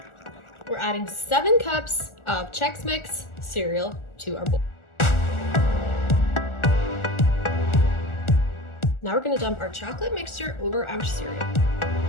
We're adding 7 cups of Chex Mix cereal to our bowl. Now we're gonna dump our chocolate mixture over our cereal.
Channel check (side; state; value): right; late; 1.4 ms